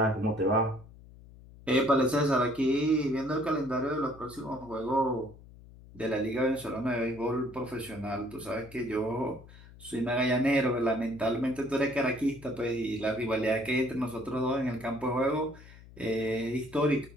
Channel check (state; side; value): noise; left; hum, 20 dB below the sound